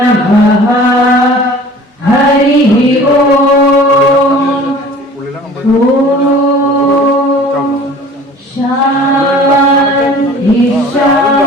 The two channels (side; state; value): both; normal; correlation 0.46